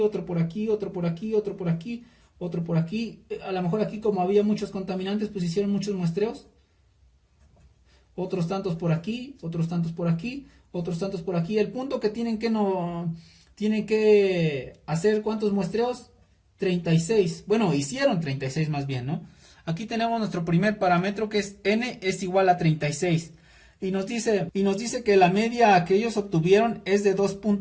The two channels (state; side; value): identical; both; correlation 1.00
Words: por aquí, otro por aquí, otro por aquí, otro por aquí. A lo mejor aquí, como había muchos contaminantes, pues hicieron muchos muestreos. Otros tantos por aquí, otros tantos por aquí, otros tantos por aquí. El punto que tienen que hacer, ¿cuántos muestreos? 36. Bueno, hicieron 36 más bien, ¿no? Aquí tenemos nuestro primer parámetro, que es n es igual a 36. Y nos dice que la media que ellos obtuvieron es de